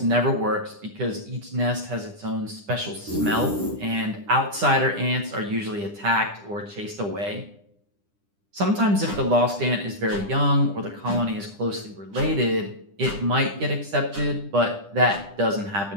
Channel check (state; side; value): late; left; 10 ms